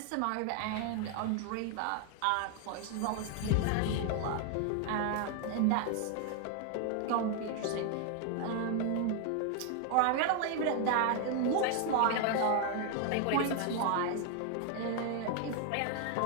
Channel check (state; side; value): different; both; correlation 0.00